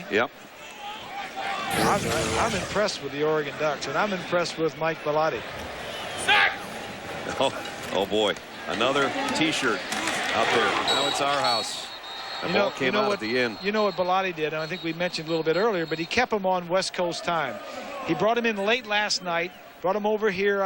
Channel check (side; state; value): both; identical; correlation 1.00